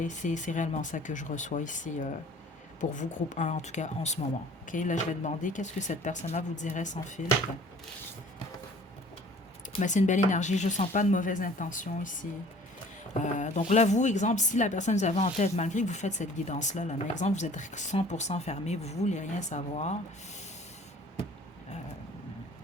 C'est réellement ça que je reçois ici. Pour vous, groupe un, en tout cas en ce moment. OK, là, je vais demander qu'est-ce que cette personne-là vous dirait sans filtre. Mais c'est une belle énergie, je ne sens pas de mauvaise intention ici. Donc là, vous, exemple, si la personne vous avez en tête, malgré que vous faites cette guidance-là, là, mais exemple, vous êtes 100% fermé, vous ne voulez rien savoir,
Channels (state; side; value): normal; both; correlation 0.50